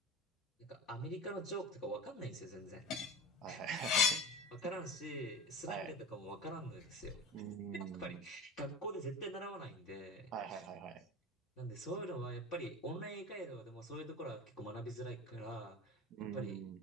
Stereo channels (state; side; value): normal; both; correlation 0.33